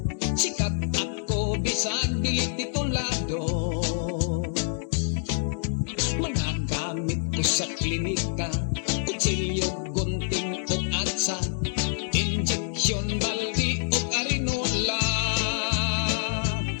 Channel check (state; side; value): silent; right; digital silence